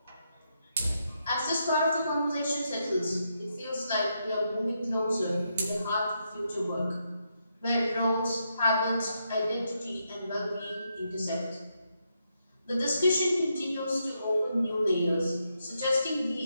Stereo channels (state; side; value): inverted; both; correlation -0.81